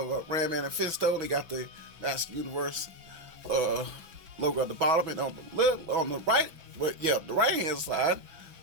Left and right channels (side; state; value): left; late; 6.2 ms